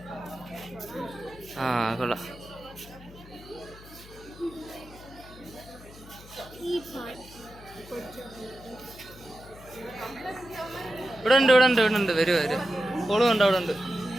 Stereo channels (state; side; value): noise; left; hum, 19 dB below the sound